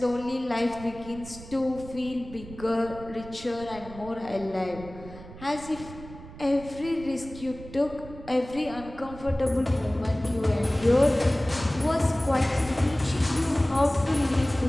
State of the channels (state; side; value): noise; right; rumble, 15 dB below the sound